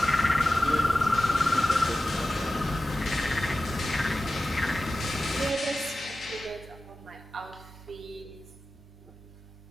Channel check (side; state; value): both; normal; correlation 0.95